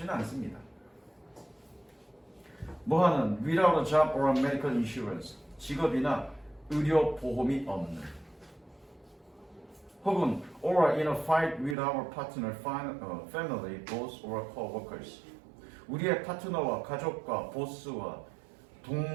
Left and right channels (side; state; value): left; drops out; at 11.8 s